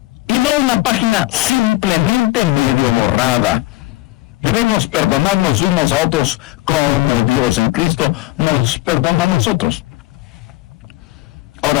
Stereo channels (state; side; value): quieter; right; 19.1 dB